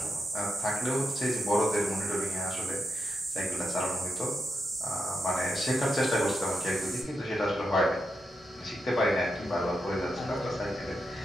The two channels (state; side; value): normal; both; correlation 0.85